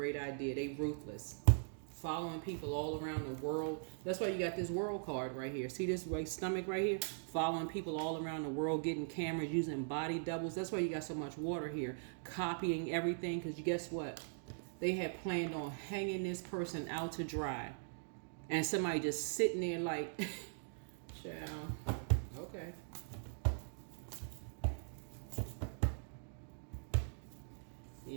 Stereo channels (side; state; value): left; silent; digital silence